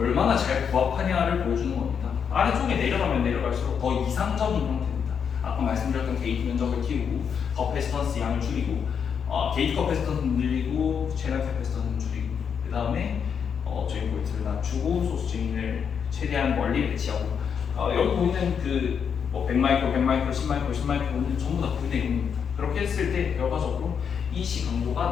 잘 부합하냐를 보여주는 겁니다. 아래쪽에 내려가면 내려갈수록 더 이상적인 형태입니다. 아까 말씀드렸던 게이트 면적을 키우고 커패시턴스 양을 줄이고 게이트 커패시턴스는 늘리고 채널 캐패시턴스는 줄이고 그 다음에 저희 볼트를 낮추고 소스 체인을 최대한 멀리 배치하고 여기 보이는 그 100마이크로, 100마이크로, 10마이크로, 10마이크로는 전부 다 9대 0입니다. 그렇게 했을 때 결과적으로 EC 강도가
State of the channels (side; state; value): right; quieter; 7.1 dB